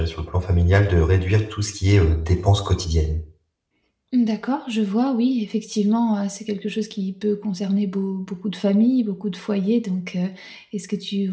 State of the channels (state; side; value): identical; both; correlation 1.00